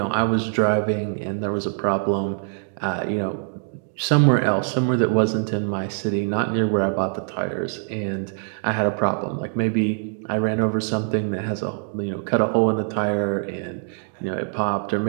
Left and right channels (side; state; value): left; silent; 63 dB below the other